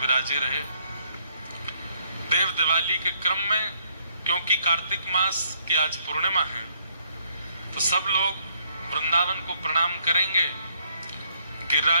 रहे। देव दिवाली के क्रम में, क्योंकि कार्तिक मास की आज पूर्णिमा है, तो सब लोग वृंदावन को प्रणाम करेंगे,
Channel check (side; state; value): both; inverted; correlation -0.68